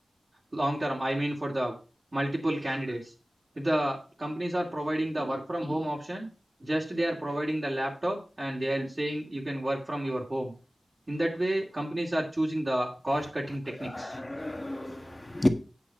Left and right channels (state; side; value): normal; both; correlation 0.97